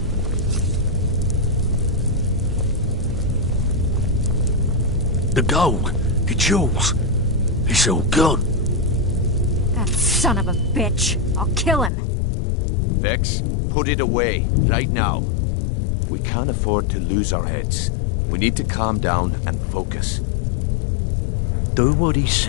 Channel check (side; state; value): right; drops out; at 11.9 s